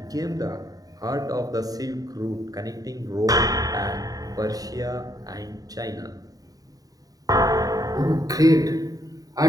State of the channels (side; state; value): left; late; 0.18 ms